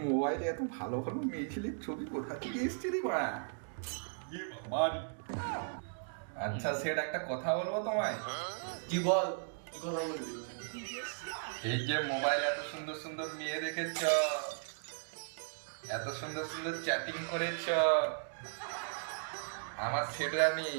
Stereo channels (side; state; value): left; silent; digital silence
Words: মোবাইলে এত ভালো ভালো মেয়ে ছেলের ছবি কোথা থেকে এসছে রে মা? আচ্ছা সেট একটা কথা বলবো তোমায়। কি বল, কথা বলবি? এই যে মোবাইল এত সুন্দর সুন্দর মেয়ে দেখেছ, এত সুন্দর সুন্দর চ্যাটিং করেছ, আমার সেট রানী